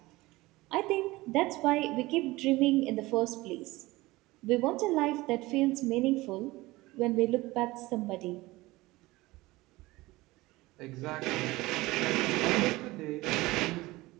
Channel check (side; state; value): left; quieter; 20.0 dB